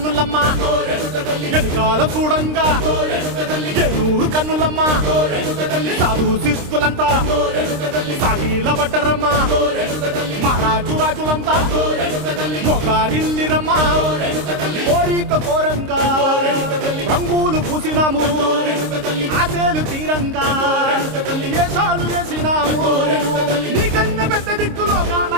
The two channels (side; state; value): left; late; 26 ms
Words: వెనకాల చూడంగా ఏనూరు కన్నులమ్మా సాధు శిస్తులంతా సాగిల పడ్డరమ్మా మహారాజు రాజులంతా మొగారిల్లిరమ్మా కోరిక కోరంగా రంగులు పూసినాము ఆశలు తీరంగా ఏసాలు వేసినాము నీకన్నా పెద్ద దిక్కులో కాల